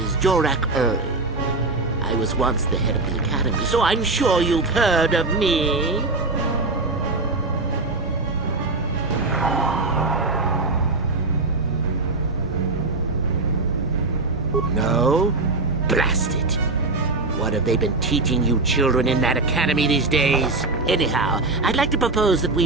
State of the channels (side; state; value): left; quieter; 3.3 dB